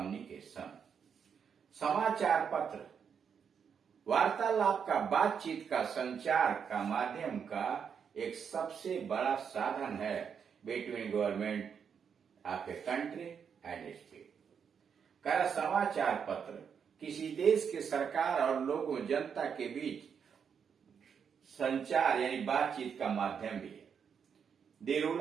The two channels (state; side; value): quieter; left; 7.1 dB